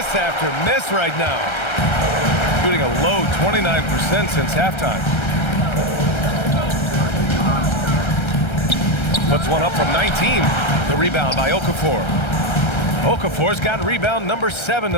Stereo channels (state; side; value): late; right; 1.3 ms